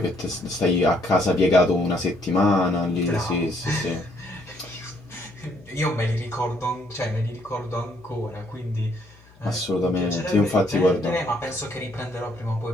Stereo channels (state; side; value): noise; left; hum, 26 dB below the sound